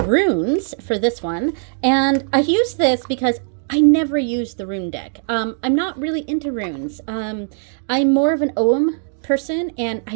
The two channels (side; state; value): left; silent; digital silence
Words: runes for this one, and I used this because I never used the rune deck. I'm not really into runes. I'm more of an Ogham person, and